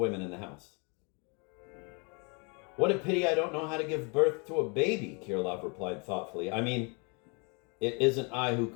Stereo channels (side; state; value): right; quieter; 33.2 dB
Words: in the house. What a pity I don't know how to give birth to a baby, Kirilov replied thoughtfully. I mean, it isn't I who